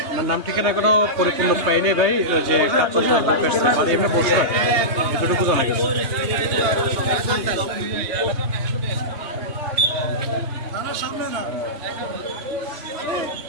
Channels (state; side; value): late; left; 3.2 ms